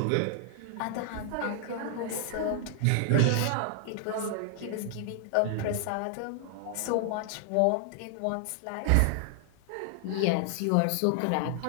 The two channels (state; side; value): different; both; correlation 0.00